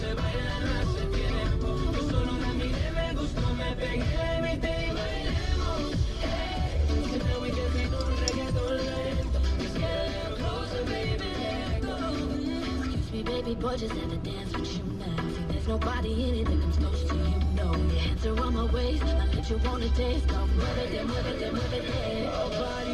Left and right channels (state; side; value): identical; both; correlation 1.00